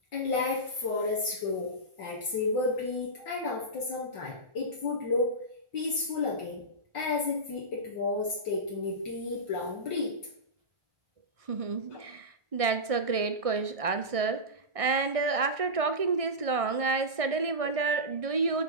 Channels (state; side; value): late; left; 1.6 ms